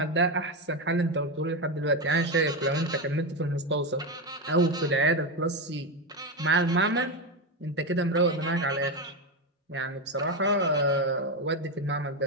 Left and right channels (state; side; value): normal; both; correlation 0.12